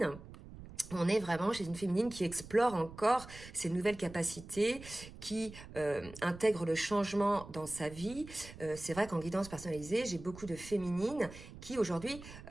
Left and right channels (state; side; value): noise; right; rumble, 16 dB below the sound